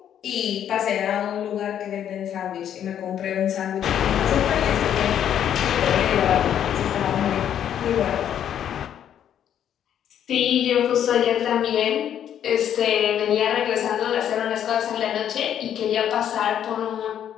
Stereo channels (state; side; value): quieter; right; 9.8 dB